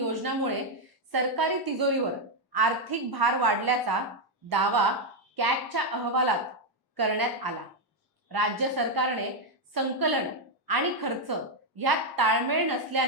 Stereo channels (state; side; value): normal; both; correlation 0.02